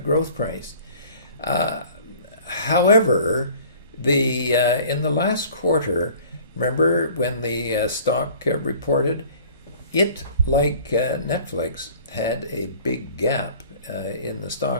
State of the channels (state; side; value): inverted; both; correlation -0.49